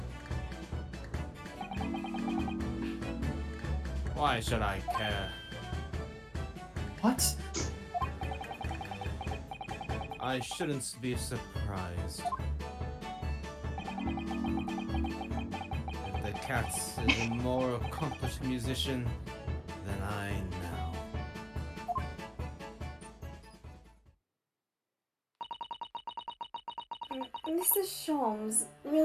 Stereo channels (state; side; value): identical; both; correlation 1.00